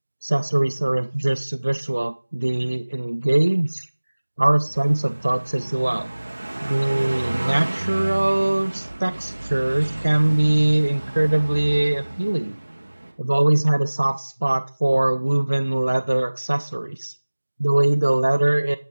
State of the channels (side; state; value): both; inverted; correlation -1.00